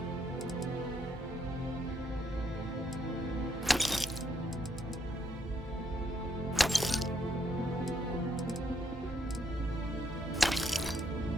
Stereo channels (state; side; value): normal; both; correlation 0.74